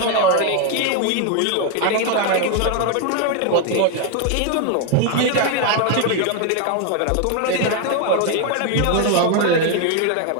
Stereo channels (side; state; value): both; different; correlation 0.01